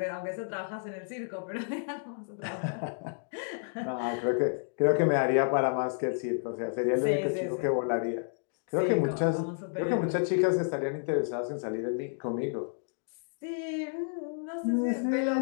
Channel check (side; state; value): right; silent; digital silence